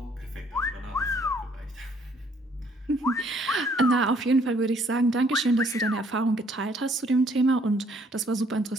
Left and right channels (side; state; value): both; normal; correlation 0.64